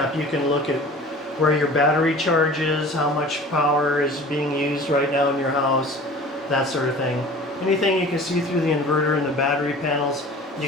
You can look at where your battery charge is, how much power is being used right now in your house, that sort of thing. Anything you can see through the inverter and the battery panels, you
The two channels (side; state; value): both; normal; correlation 0.43